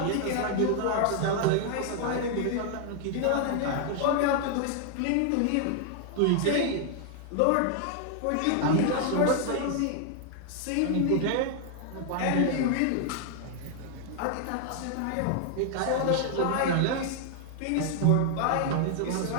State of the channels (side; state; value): both; different; correlation 0.00